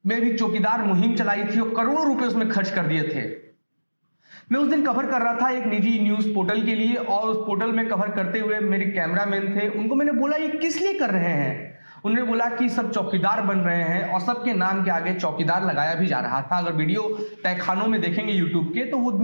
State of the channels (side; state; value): both; inverted; correlation -1.00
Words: में भी चौकीदार मुहिम चलाई थी और करोड़ों रुपए उसमें खर्च कर दिए थे। मैं उस दिन कवर कर रहा था एक निजी न्यूज पोर्टल के लिए और उस पोर्टल में कवर करते हुए मेरे कैमरामैन थे। उनको मैंने बोला ये किस लिए कर रहे हैं? उन्होंने बोला कि सब चौकीदार बन रहे हैं और सबके नाम के आगे चौकीदार लगाया भी जा रहा था। अगर वीडियो तहखानों में देखेंगे यूट्यूब के तो वो